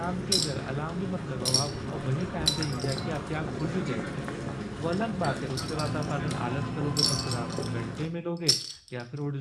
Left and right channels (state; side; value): identical; both; correlation 1.00